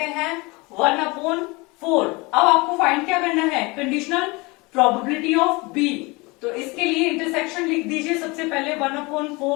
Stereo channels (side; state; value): right; quieter; 25.4 dB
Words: हैं 1/4। अब आपको फाइंड क्या करना है, कंडीशनल प्रोबेबिलिटी ऑफ बी। तो इसके लिए इंटरसेक्शन लिख दीजिए सबसे पहले